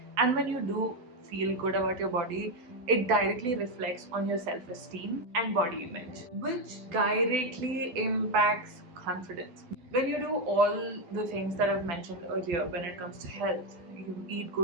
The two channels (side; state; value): left; late; 12 ms